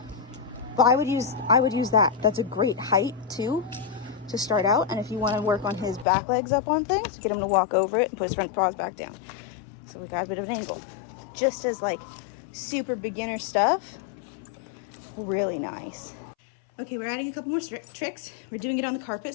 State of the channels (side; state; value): right; drops out; at 6.1 s